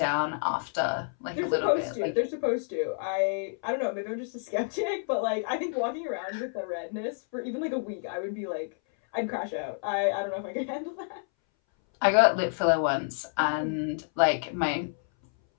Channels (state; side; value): silent; right; 59 dB below the other